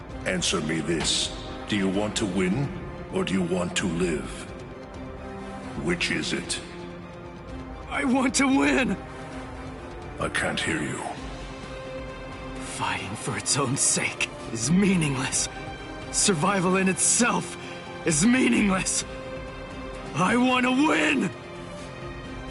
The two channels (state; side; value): identical; both; correlation 1.00